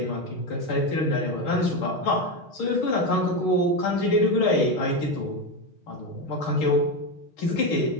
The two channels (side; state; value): right; late; 6.4 ms